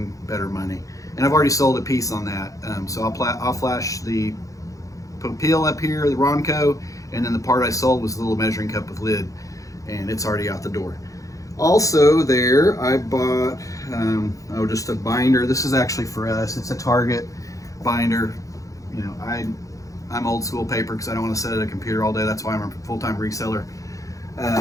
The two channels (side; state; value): right; late; 0.16 ms